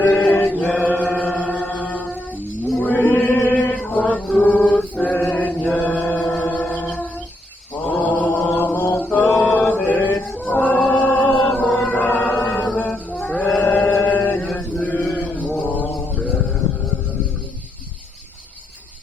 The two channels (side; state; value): both; normal; correlation 0.79